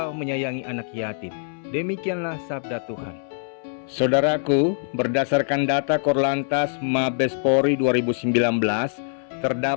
menyayangi anak yatim." Demikianlah sabda Tuhan. Saudaraku, berdasarkan data Korlantas Mabes Polri 2019,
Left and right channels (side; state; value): right; silent; 63 dB below the other